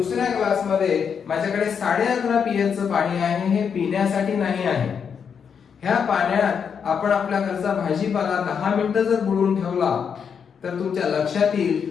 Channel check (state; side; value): quieter; right; 6.9 dB